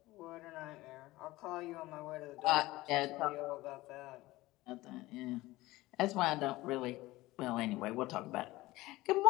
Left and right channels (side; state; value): right; quieter; 18.7 dB